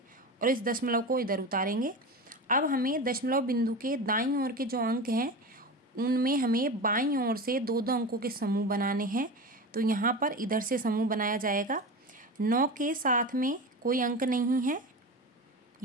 और इस दशमलव को इधर उतारेंगे। अब हमें दशमलव बिंदु के दाईं ओर के जो अंक हैं उनमें हमें बाईं ओर से दो दो अंकों के समूह बनाने हैं। तो यहाँ पर इधर से समूह बनाया जाएगा। 9 के साथ में कोई अंक नहीं है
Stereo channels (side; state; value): both; normal; correlation 0.27